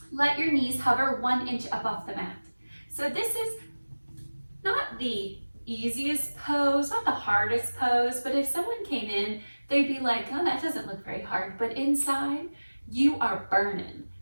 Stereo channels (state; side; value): inverted; both; correlation -1.00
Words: Let your knees hover 1 inch up off the mat. So this is not the easiest pose, not the hardest pose, but if someone came in, they'd be like, oh, that doesn't look very hard. But inside, you are burning.